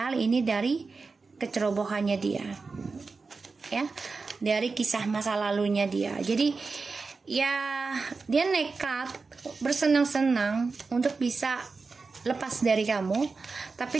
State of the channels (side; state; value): left; quieter; 4.3 dB